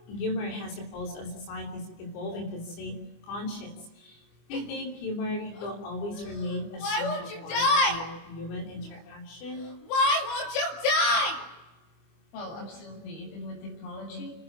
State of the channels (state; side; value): late; right; 25 ms